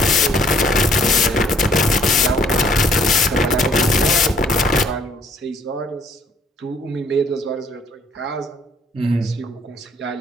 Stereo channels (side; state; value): both; normal; correlation 0.62